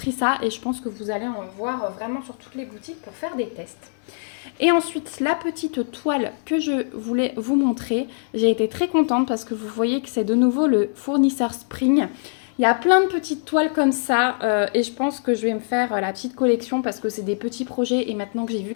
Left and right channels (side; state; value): right; silent; 63 dB below the other